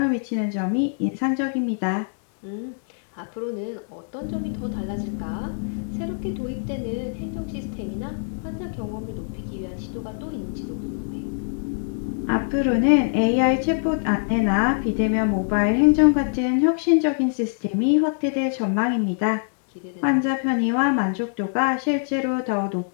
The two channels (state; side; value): silent; right; digital silence